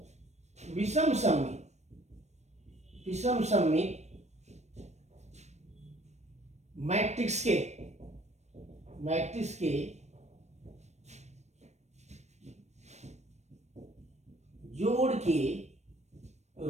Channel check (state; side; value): late; left; 0.32 ms